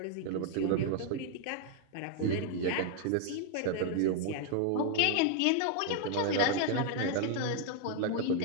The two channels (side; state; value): both; different; correlation 0.00